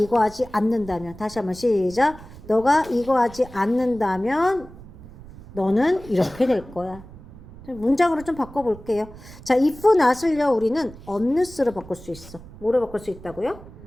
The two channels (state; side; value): noise; right; rumble, 18 dB below the sound